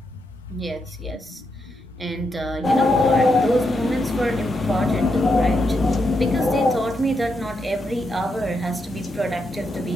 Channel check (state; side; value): normal; both; correlation 0.82